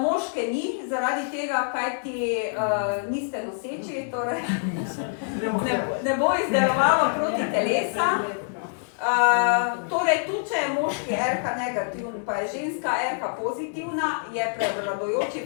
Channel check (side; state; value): right; silent; digital silence